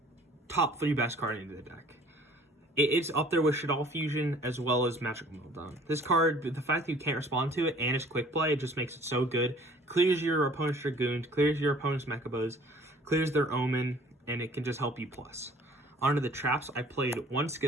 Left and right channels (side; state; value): both; normal; correlation 0.52